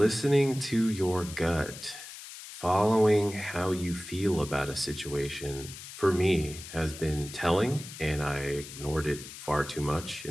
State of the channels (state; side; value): noise; left; hiss, 13 dB below the sound